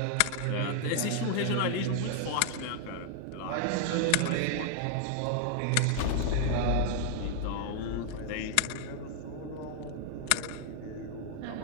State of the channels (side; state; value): both; different; correlation 0.00